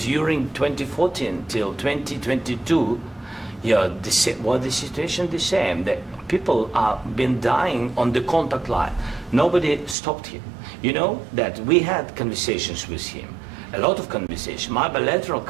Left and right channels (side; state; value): left; drops out; at 10.0 s